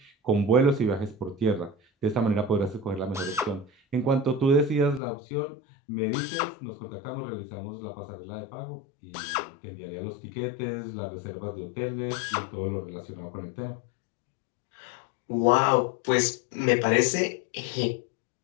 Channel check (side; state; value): right; drops out; at 5.0 s